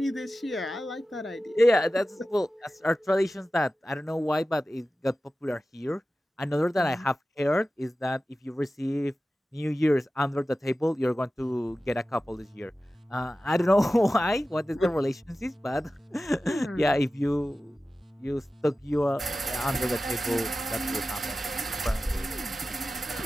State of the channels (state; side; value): normal; both; correlation 0.95